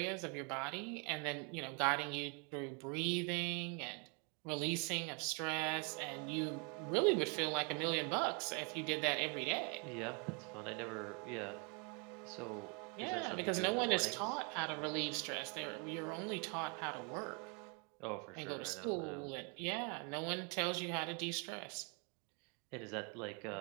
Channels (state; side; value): quieter; left; 34.6 dB